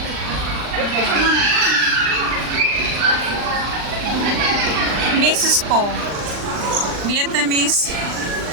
Mrs. Po. Vietnamese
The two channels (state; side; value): late; left; 39 ms